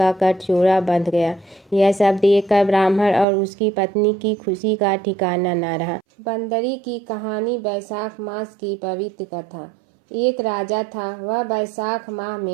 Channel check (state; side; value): drops out; left; at 3.2 s